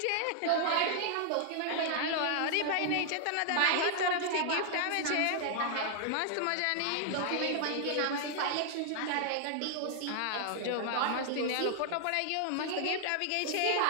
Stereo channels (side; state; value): both; different; correlation 0.00